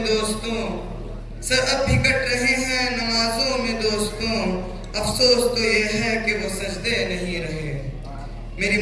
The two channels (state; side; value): identical; both; correlation 1.00